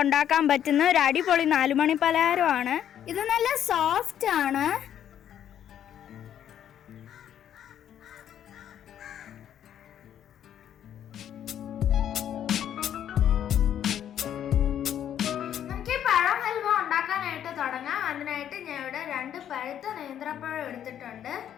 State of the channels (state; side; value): quieter; right; 10.1 dB